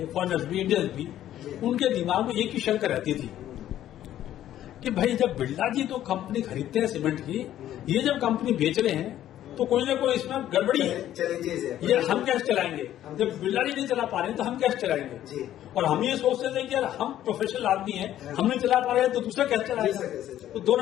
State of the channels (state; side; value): quieter; right; 12.2 dB